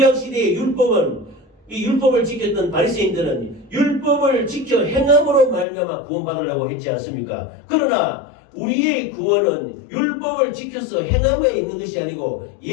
시대의 율법은 이 율법을 지켰던 바리새인들은 율법을 지켜 행함으로 말미암아 구원받으려고 했지 않습니까? 그러나 우리의 구원은 율법을 지켜서 행함에 있는 것이 아니고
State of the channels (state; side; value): drops out; right; at 5.7 s